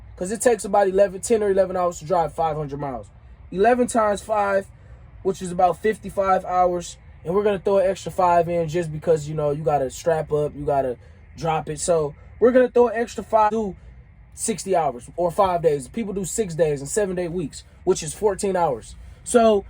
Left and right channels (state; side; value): identical; both; correlation 1.00